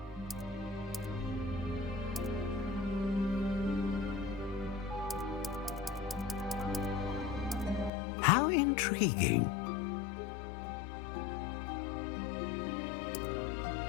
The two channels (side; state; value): right; drops out; at 7.9 s